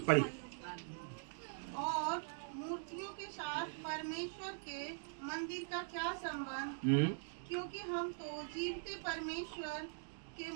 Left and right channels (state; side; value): silent; left; digital silence